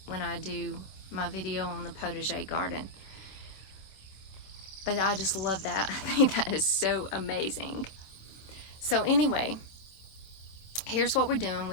when I do my video on the potager garden. But I just love that. I think that is so amazing. So anyway, here's what we're doing.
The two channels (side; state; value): right; late; 26 ms